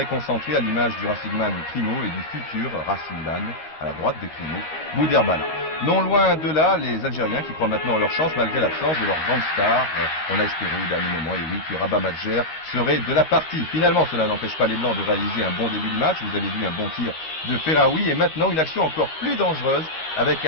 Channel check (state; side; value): late; right; 13 ms